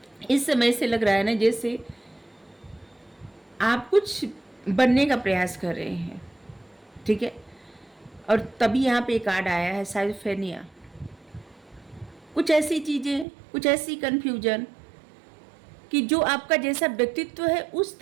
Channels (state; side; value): drops out; left; at 13.2 s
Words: इस समय से लग रहा है ना जैसे आप कुछ बनने का प्रयास कर रहे हैं, ठीक है। और तभी यहाँ पे कार्ड आया है साइफेनिया। कुछ ऐसी चीज़ें, कुछ ऐसी कन्फ्यूजन कि जो आपका जैसा व्यक्तित्व है उस